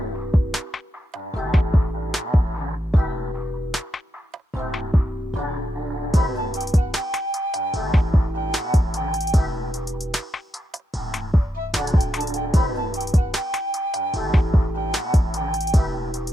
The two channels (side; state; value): both; normal; correlation 0.84